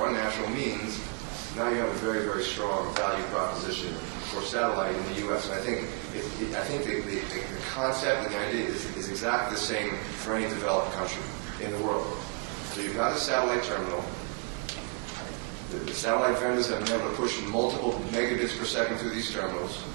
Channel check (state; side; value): quieter; left; 37.5 dB